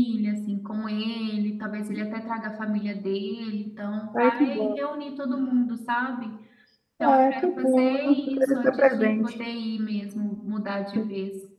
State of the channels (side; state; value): both; identical; correlation 1.00